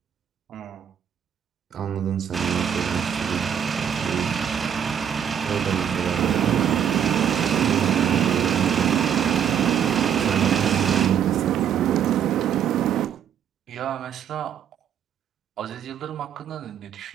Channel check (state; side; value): quieter; left; 8.7 dB